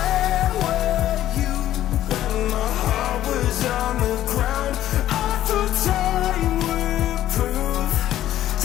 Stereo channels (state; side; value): quieter; right; 12.8 dB